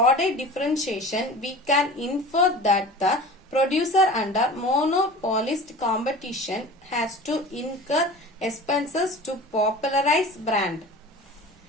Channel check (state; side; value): normal; both; correlation 0.37